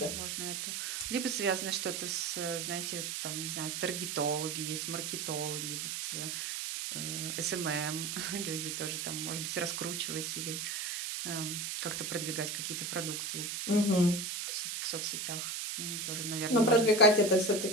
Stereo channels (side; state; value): right; noise; hiss, 3 dB below the sound